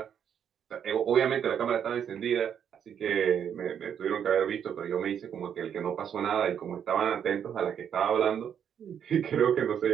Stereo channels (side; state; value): left; quieter; 8.5 dB